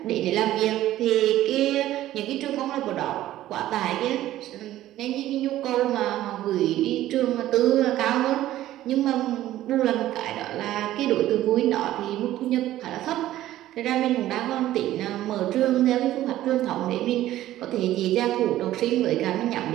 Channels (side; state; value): left; quieter; 14.1 dB